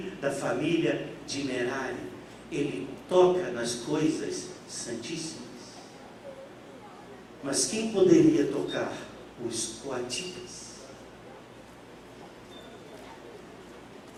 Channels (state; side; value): identical; both; correlation 1.00